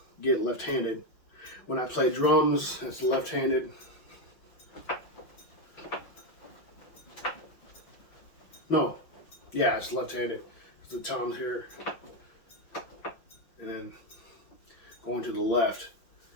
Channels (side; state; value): right; late; 6.0 ms